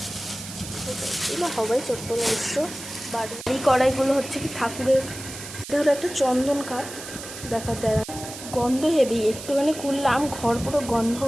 এগুলো হবাই চট্টল অবশ্য। বাড়ি এই কড়াইগুলো হচ্ছে কি ঠাকুরের। এটা হলো একটা চন্দন কাঠ, দেখা দেয় গন্ধ হেভি, একটুখানি খুললাম ঘর পুরো গন্ধ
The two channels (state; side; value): noise; right; hiss, 12 dB below the sound